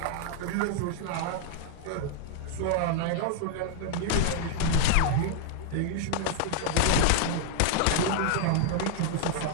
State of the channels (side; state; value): both; different; correlation -0.01